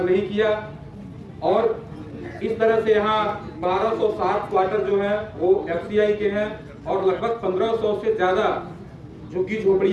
नहीं किया और इस तरह से यहाँ 1207 क्वार्टर जो है वो FCI के हैं और लगभग 1500 से ज्यादा झुग्गी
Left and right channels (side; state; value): both; identical; correlation 1.00